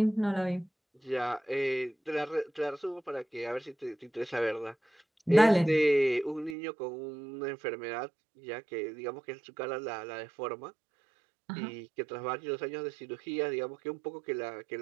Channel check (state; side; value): drops out; left; at 6.6 s